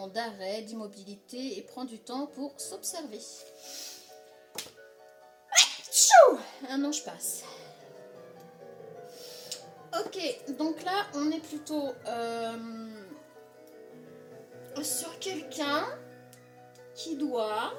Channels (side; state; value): both; identical; correlation 1.00